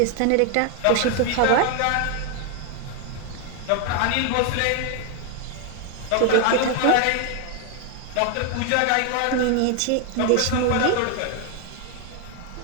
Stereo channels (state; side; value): different; both; correlation 0.01